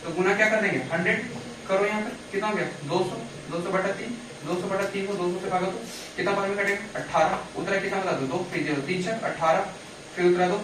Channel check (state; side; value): identical; both; correlation 1.00